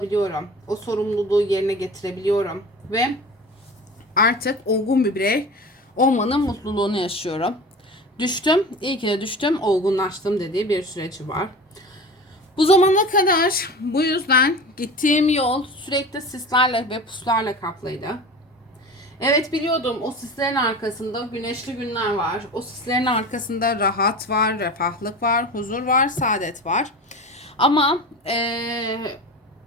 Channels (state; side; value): normal; both; correlation 0.34